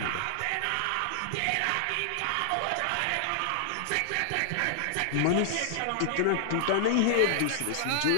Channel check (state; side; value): different; both; correlation -0.01